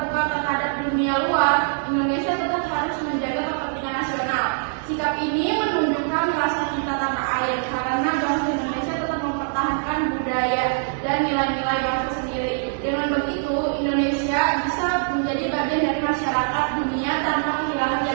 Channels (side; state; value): left; silent; digital silence